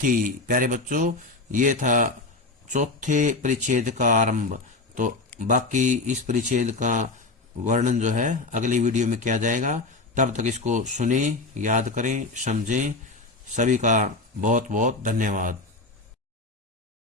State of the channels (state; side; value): quieter; right; 3.4 dB